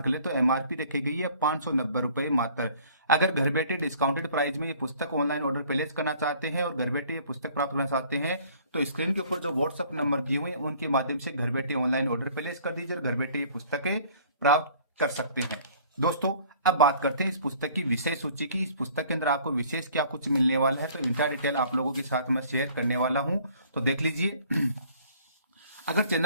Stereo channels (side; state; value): both; inverted; correlation -0.54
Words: करें तो एमआरपी रखी गई है 590 रुपए मात्र। अगर घर बैठे डिस्काउंटेड प्राइस में ये पुस्तक ऑनलाइन ऑर्डर प्लेस करना चाहते हैं और घर बैठे ये पुस्तक प्राप्त करना चाहते हैं तो स्क्रीन के ऊपर जो व्हाट्सएप नंबर दिए हुए हैं उनके माध्यम से घर बैठे ऑनलाइन ऑर्डर प्लेस कर दीजिए और घर बैठे ये पुस्तकें प्राप्त कर सकते हैं। दोस्तों, अब बात करते हैं इस पुस्तक की विषय सूची की। इस पुस्तक के अंदर आपको विशेष क्या कुछ मिलने वाला है तो इंटा डिटेल आप लोगों के साथ मैं शेयर करने वाला हूं, तो देख लीजिए। अगर